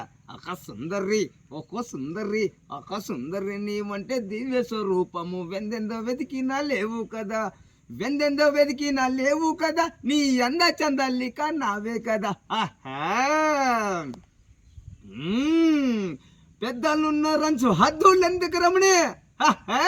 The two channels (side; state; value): both; identical; correlation 1.00